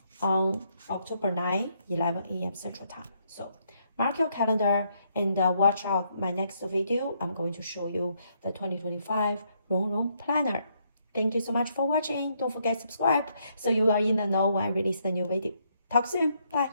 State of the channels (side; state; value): both; inverted; correlation -0.74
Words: on October 9, 11 a.m. Central Time. So mark your calendar and watch out my next video. I'm going to show you the 2025 Rongrong Planner. Thank you so much for watching. Don't forget to subscribe so you are in the know when I release the new video. Talk soon.